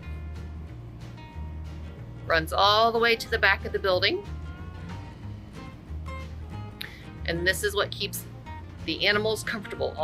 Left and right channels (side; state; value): both; identical; correlation 1.00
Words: Runs all the way to the back of the building. And this is what keeps the animals comfortable